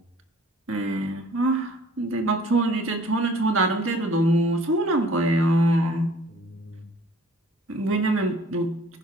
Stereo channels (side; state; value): both; normal; correlation 0.53